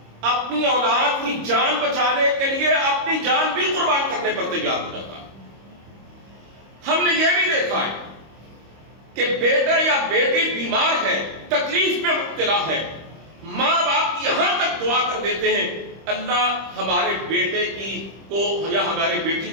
اپنی اولاد کی جان بچانے کے لیے اپنی جان بھی قربان کرنے پر تیار ہو جاتا ہے۔ ہم نے یہ بھی دیکھا ہے کہ بیٹا یا بیٹی بیمار ہے، تکلیف میں مبتلا ہے، ماں باپ یہاں تک دعا کر دیتے ہیں، اللہ ہمارے بیٹے کو یا ہماری بیٹی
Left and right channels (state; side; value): late; left; 25 ms